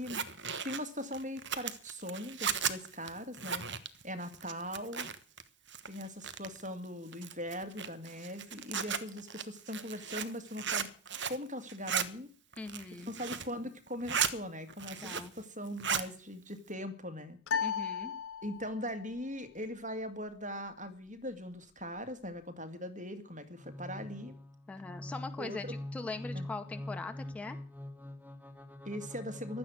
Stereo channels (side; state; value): both; normal; correlation 0.15